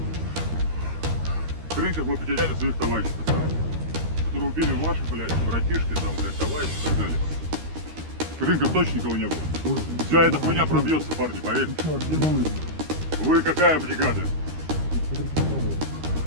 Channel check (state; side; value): late; left; 13 ms